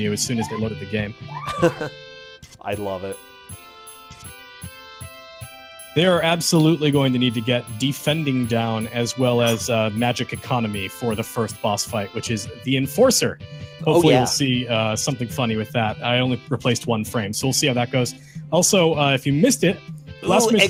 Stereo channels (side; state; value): both; identical; correlation 1.00